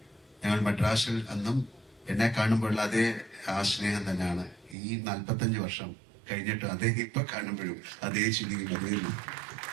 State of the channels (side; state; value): left; drops out; at 4.8 s